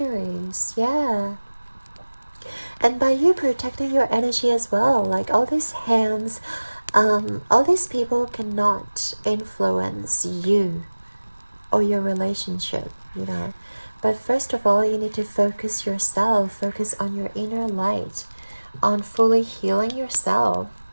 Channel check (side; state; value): both; inverted; correlation -1.00